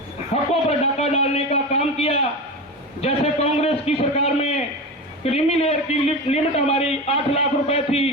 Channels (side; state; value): both; normal; correlation 0.24